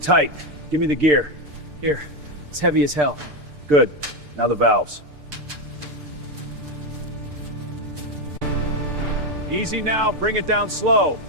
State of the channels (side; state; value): left; late; 6.7 ms